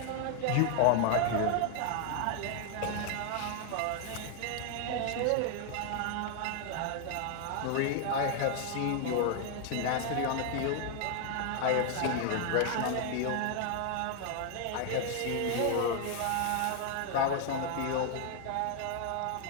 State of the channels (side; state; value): both; different; correlation 0.00